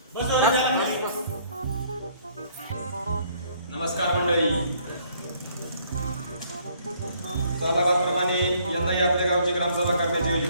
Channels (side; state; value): both; inverted; correlation -0.63